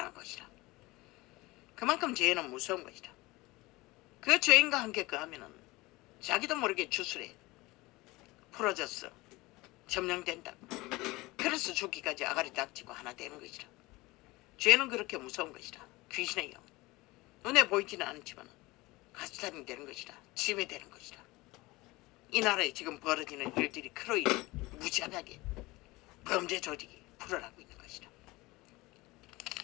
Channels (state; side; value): quieter; right; 21.3 dB